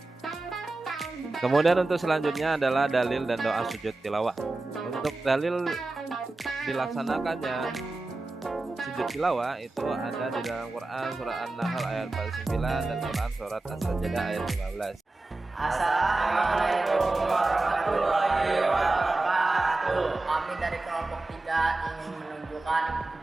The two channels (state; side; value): quieter; left; 3.1 dB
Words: Kemudian untuk selanjutnya adalah dalil dan doa sujud tilawah. Untuk dalil dilaksanakannya sujud tilawah itu ada di dalam Quran surat An-Nahl ayat 49 dan Quran surat As-Sajdah ayat 15. Assalamualaikum warahmatullahi wabarakatuh. Kami dari kelompok 3 ingin menunjukkan